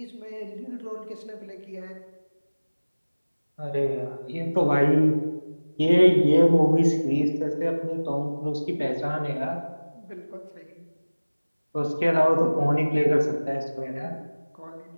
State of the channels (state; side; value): inverted; both; correlation -1.00